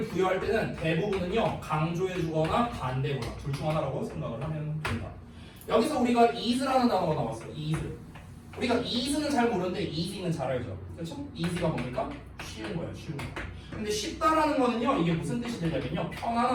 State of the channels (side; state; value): both; identical; correlation 1.00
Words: 부여할 때는 대부분은요, 강조해주거나 반대거나 둘 중 하나라고 생각을 하면 된다. 여기서 우리가 is라는 단어가 나왔어. is. 우리가 is는 잘 모르는데 easy는 잘 알죠. 그렇죠? easy가 뭡니까? 쉬운 거야, 쉬운 거. 근데 쉽다라는 거는요, 이게 무슨 뜻이 되냐면요,